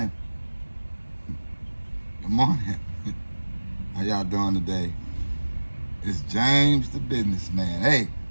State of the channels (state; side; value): inverted; both; correlation -1.00